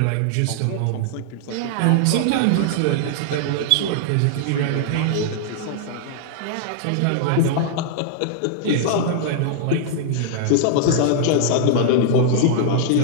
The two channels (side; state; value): both; different; correlation -0.01